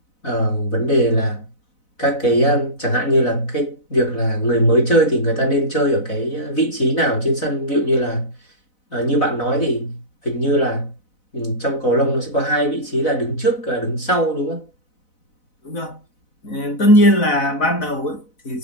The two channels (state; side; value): late; right; 4.0 ms